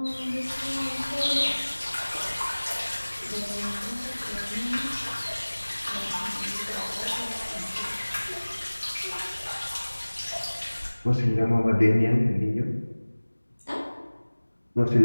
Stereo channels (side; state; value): both; inverted; correlation -1.00